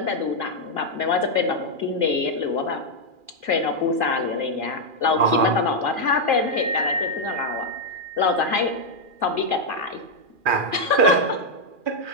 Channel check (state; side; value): late; left; 2.4 ms